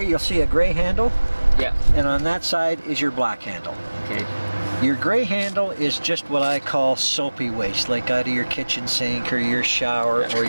you'll see a gray handle. Yeah. And on that side is your black handle. Okay. Your gray handle is just what I call soapy waste, like out of your kitchen sink or your shower or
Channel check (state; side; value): inverted; both; correlation -1.00